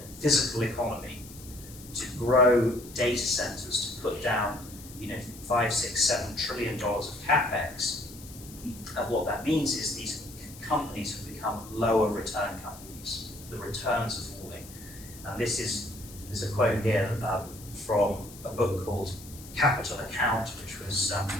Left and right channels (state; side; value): noise; left; hiss, 17 dB below the sound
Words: physical economy, to grow data centers, to put down, 5, 6, $7 trillion of capex. And what that means is these companies have become lower return companies. The returns are falling. And there's a quote here from a book called Capital Account, which was